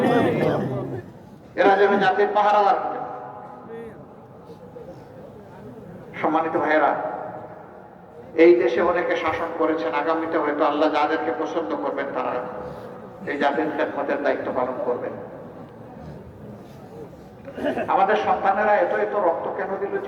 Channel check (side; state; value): both; identical; correlation 1.00